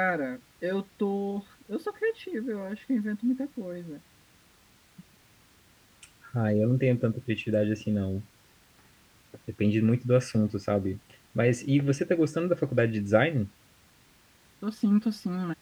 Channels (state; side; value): identical; both; correlation 1.00